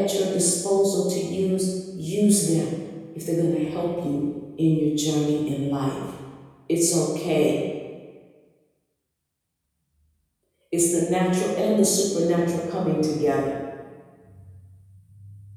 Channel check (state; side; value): identical; both; correlation 1.00